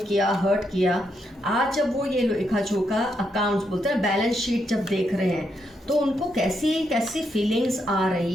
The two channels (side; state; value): both; normal; correlation 0.80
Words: किया, हर्ट किया, आज जब वो ये लेखा जोखा अकाउंट्स बोलते हैं, बैलेंस शीट जब देख रहे हैं, तो उनको कैसी कैसी फीलिंग्स आ